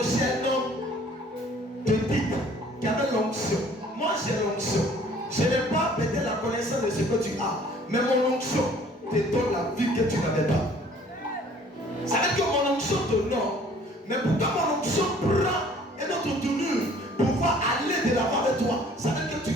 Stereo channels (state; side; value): normal; both; correlation 0.54